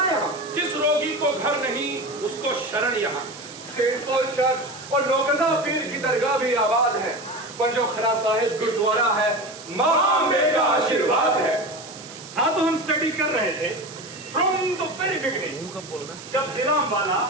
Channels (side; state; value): right; noise; hiss, 16 dB below the sound